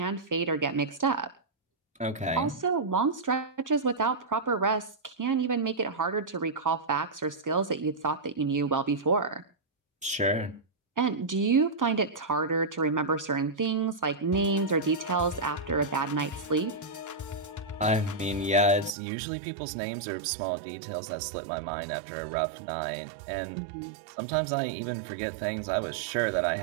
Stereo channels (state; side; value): drops out; left; at 18.9 s